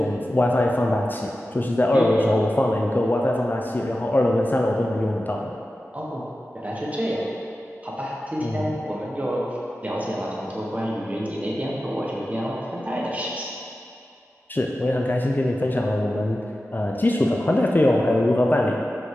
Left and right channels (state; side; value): normal; both; correlation 0.93